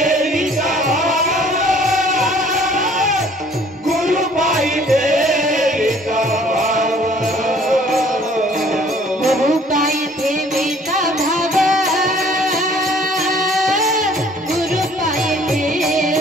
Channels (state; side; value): normal; both; correlation 0.56